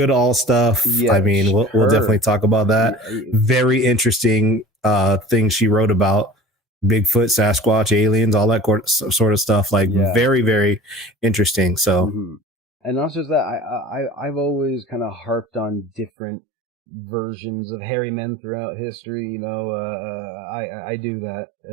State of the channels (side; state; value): left; drops out; at 16.1 s